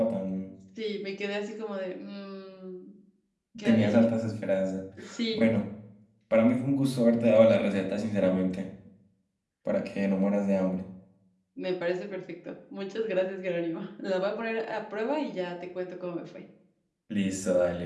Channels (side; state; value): both; identical; correlation 1.00